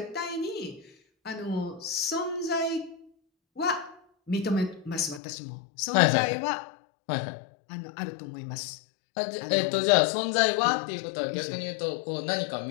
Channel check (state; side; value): drops out; right; at 5.2 s